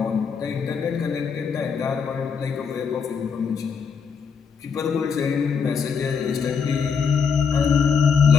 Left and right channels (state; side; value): quieter; right; 6.0 dB